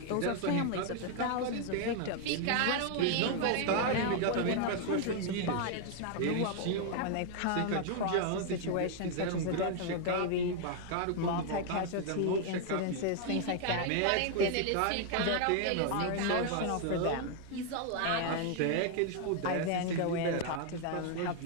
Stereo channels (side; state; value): both; different; correlation 0.00